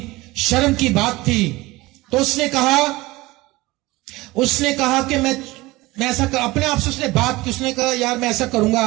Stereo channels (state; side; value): quieter; left; 20.4 dB